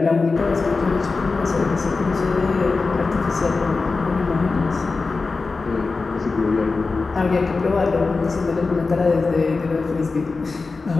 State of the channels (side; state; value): right; quieter; 4.1 dB